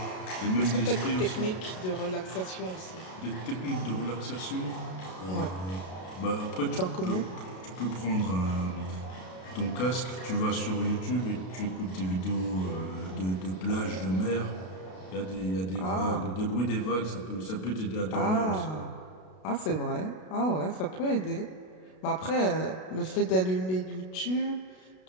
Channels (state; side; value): late; right; 32 ms